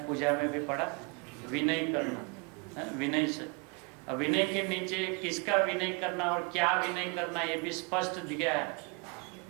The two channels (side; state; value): left; quieter; 32.1 dB